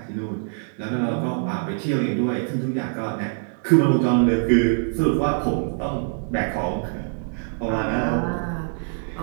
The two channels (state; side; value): silent; left; 63 dB below the other